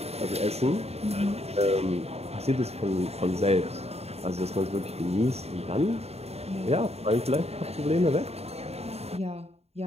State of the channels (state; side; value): late; left; 0.30 ms